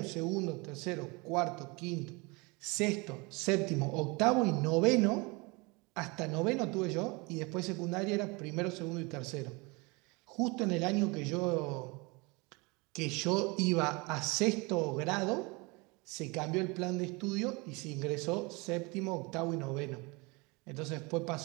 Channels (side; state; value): left; quieter; 27.0 dB